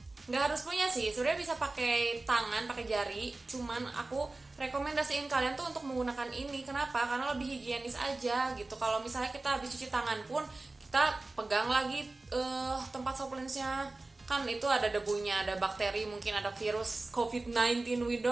Nggak harus punya sih, sebenarnya bisa pakai tangan, pakai jari. Cuman aku rekomendasiin kalian tuh untuk menggunakan ini. Kenapa? Karena lebih higienis aja gitu. Kalau misalnya kita habis cuci tangan pun kita pegang lagi tempat soft lensnya, kan itu ada debunya, ada bakteri, mungkin ada virus COVID-19, we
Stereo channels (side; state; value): left; quieter; 3.2 dB